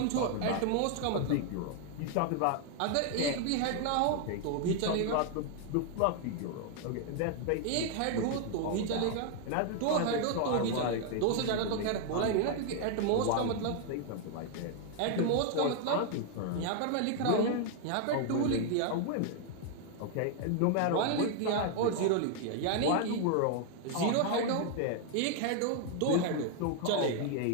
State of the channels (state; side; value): different; both; correlation 0.00